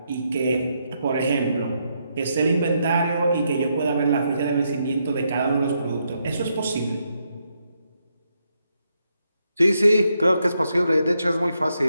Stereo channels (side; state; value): both; inverted; correlation -0.80